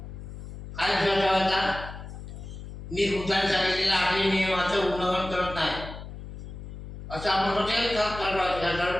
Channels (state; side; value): noise; left; hum, 11 dB below the sound